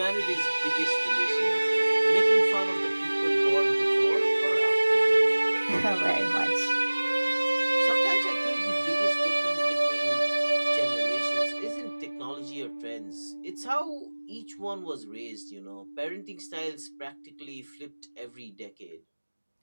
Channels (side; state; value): both; inverted; correlation -1.00